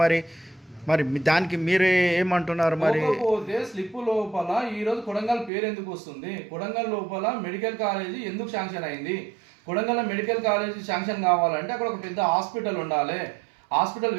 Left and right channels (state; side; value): drops out; left; at 5.5 s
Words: మరి దానికి మీరే ఏమంటున్నారు? మరి పోతే స్లిప్ లోపల ఈ రోజు కొడంగల్ పేరు ఎందుకు వస్తుంది? కొడంగల్ లోపల మెడికల్ కాలేజీ ఎందుకు శాంక్షన్ అయింది? కొడంగల్ మెడికల్ కాలేజీ శాంక్షన్ కావాలంటే అక్కడ ఒక పెద్ద హాస్పిటల్ ఉండాలి. హాస్పిటల్